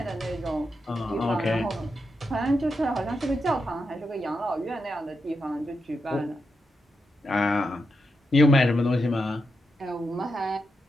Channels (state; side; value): normal; both; correlation 0.85